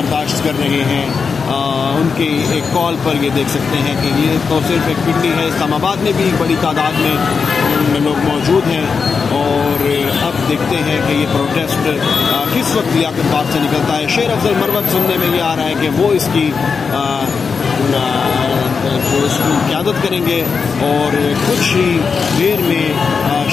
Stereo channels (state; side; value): quieter; right; 5.4 dB